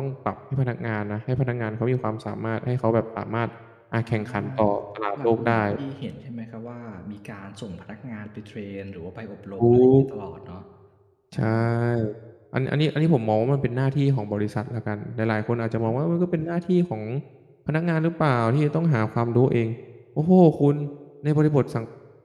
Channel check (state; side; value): identical; both; correlation 1.00